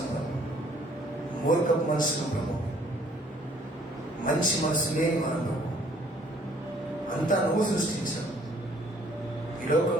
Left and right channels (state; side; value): normal; both; correlation 0.60